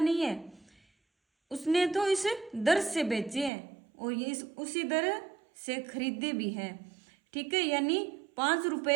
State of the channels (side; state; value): left; drops out; at 3.5 s